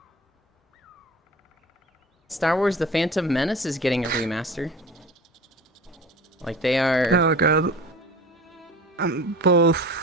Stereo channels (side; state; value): both; normal; correlation 0.38